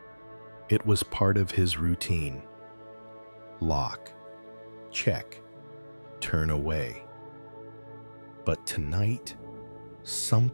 It was part of his routine. Lock, check, turn away. But tonight,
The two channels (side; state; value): both; inverted; correlation -1.00